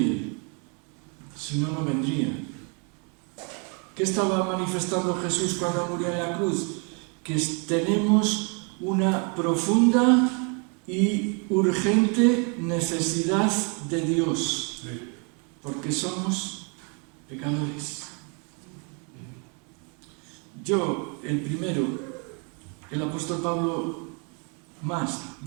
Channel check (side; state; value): left; quieter; 36.3 dB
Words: si no, no vendría. ¿Qué estaba manifestando Jesús cuando murió en la cruz? Que tenemos una profunda y urgente necesidad de Dios, porque somos pecadores. Yo, el primero, el apóstol Pablo más,